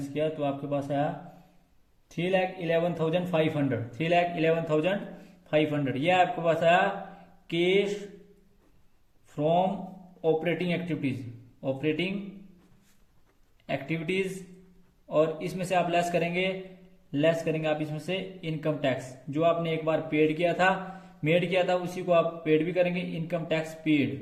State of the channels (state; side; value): identical; both; correlation 1.00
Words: किया तो आपके पास आया 3,11,500। ये आपके पास आया कैश फ्रॉम ऑपरेटिंग एक्टिविटीज। और इसमें से आप लेस करेंगे आप इसमें से इनकम टैक्स जो आपने एक बार मेड किया था उसी को आप पेड भी करेंगे, इनकम टैक्स